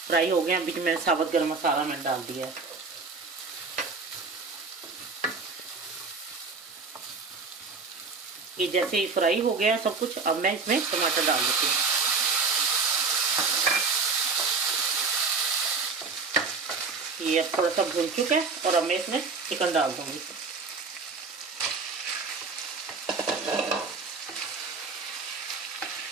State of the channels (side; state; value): left; quieter; 4.6 dB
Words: हो गया। बीच में साबुत गरम मसाला मैंने डाल दिया है। ये जैसे ही फ्राई हो गया सब कुछ, अब मैं इसमें टमाटर डाल देती हूँ। ये अब थोड़ा सा भून चुका है और अब मैं इसमें चिकन डाल दूंगी।